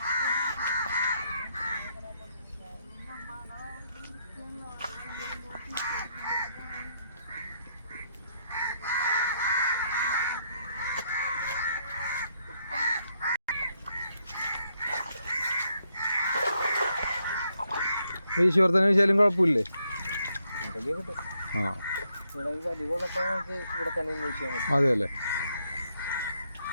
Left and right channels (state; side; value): inverted; both; correlation -0.76